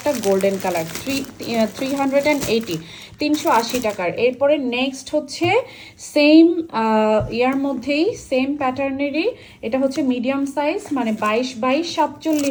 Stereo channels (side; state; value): both; identical; correlation 1.00